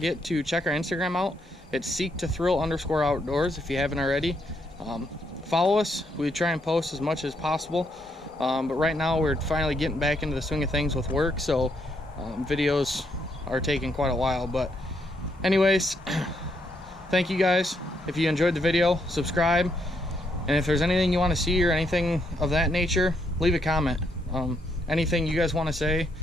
to check our Instagram out. It's seek2thrill_outdoors if you haven't already. Follow us. We try and post as much as possible, but right now we're finally getting back into the swing of things with work, so videos are taking quite a while. But anyways, thank you guys. If you enjoyed the video, subscribe, and if there's anything you want to see or anything of that nature, leave a comment. Anything you guys want to say,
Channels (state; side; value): normal; both; correlation 0.76